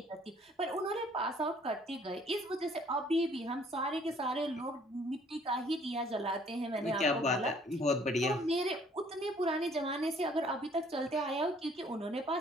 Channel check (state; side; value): normal; both; correlation 0.59